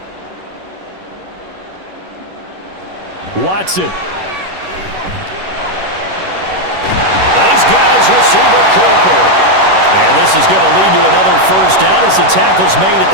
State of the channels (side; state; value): left; late; 11 ms